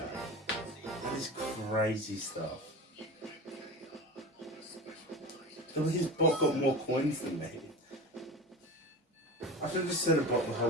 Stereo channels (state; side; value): normal; both; correlation 0.30